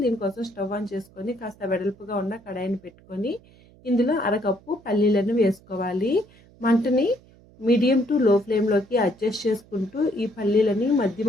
దీనికోసం స్టవ్ ఆన్ చేసుకొని కాస్త వెడల్పుగా ఉన్న కడాయిని పెట్టుకొని ఇందులో అరకప్పు పల్లీలను వేసుకోవాలి. మంటని మీడియం టు లో ఫ్లేమ్లోకి అడ్జస్ట్ చేసుకుంటూ ఈ పల్లీలని మధ్య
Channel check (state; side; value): noise; right; hum, 26 dB below the sound